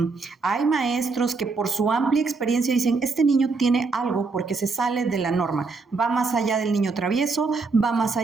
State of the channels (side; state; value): left; quieter; 4.2 dB